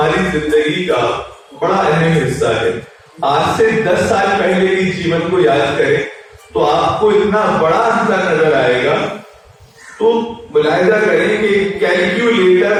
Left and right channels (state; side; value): identical; both; correlation 1.00